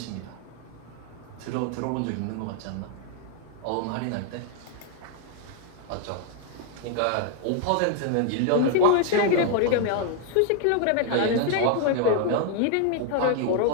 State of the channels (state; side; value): different; both; correlation 0.00